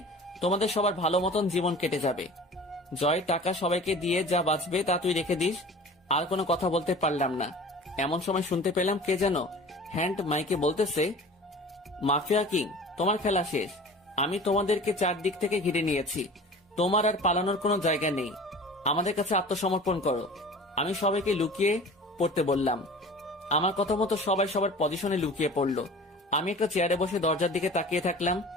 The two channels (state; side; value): normal; both; correlation 0.41